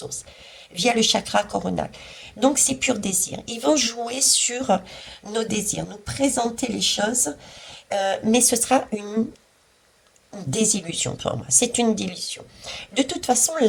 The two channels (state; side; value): identical; both; correlation 1.00